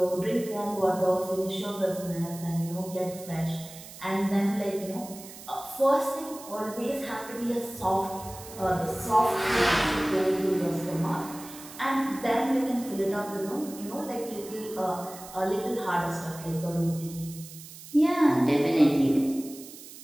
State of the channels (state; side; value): noise; right; hiss, 16 dB below the sound